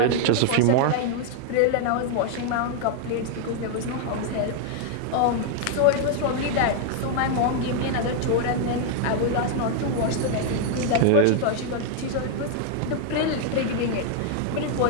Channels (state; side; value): different; both; correlation 0.00